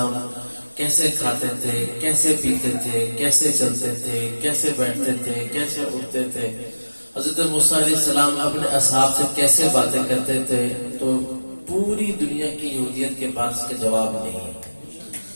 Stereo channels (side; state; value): both; inverted; correlation -1.00